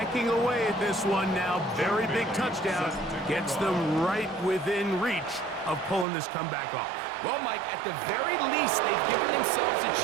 away at this one now. Very big touchdown. Gets them right within reach of pulling this comeback off. Well, Mike, at the very least, they've given themselves a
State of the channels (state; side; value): drops out; left; at 6.1 s